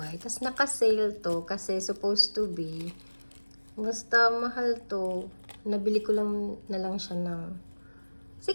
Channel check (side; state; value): both; inverted; correlation -1.00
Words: Tapos naka-sale to kasi supposed to be, basta mahal to. Nabili ko lang na lang siya ng